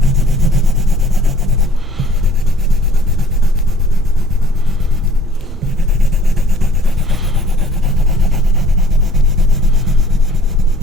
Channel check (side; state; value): both; normal; correlation 0.54